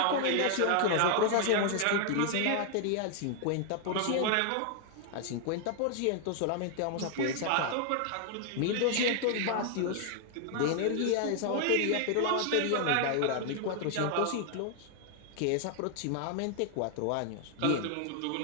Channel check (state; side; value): different; both; correlation 0.00